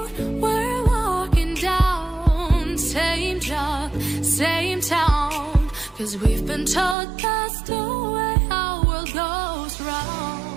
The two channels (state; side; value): drops out; left; at 7.0 s